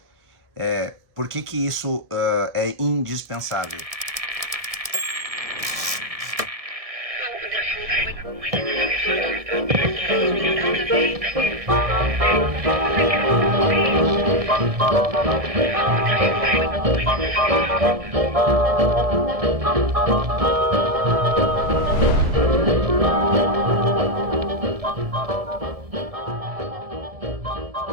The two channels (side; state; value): left; late; 1.7 ms